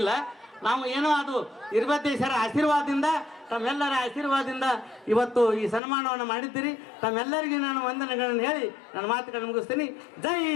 ನಾವು ಏನೋ ಅದು ಇರ್ಬದ್ದೇಶ್ವರ ಆಶೀರ್ವಾದದಿಂದ, ತಮ್ಮೆಲ್ಲರ ಆಶೀರ್ವಾದದಿಂದ ಇವತ್ತು ಈ ಸನ್ಮಾನವನ್ನು ಮಾಡಿದ್ದೀರಿ. ತಮ್ಮೆಲ್ಲರಿಗೂ ನಾನು ವಂದನೆಗಳನ್ನು ಹೇಳಿ ನನ್ನ ಮಾತುಗಳನ್ನು ಮುಗಿಸ್ತೀನಿ. ಜೈ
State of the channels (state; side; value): drops out; right; at 5.8 s